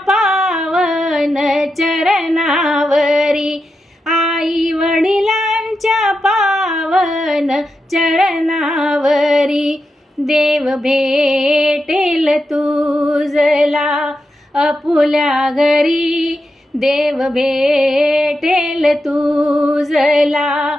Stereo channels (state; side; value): normal; both; correlation 0.88